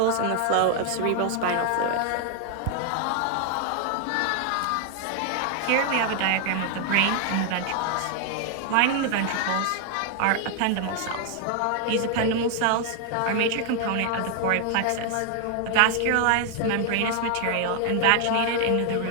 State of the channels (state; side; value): different; both; correlation 0.00